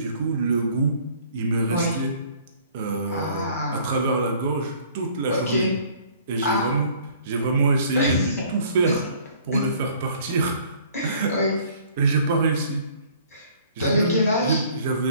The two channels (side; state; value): both; inverted; correlation -0.56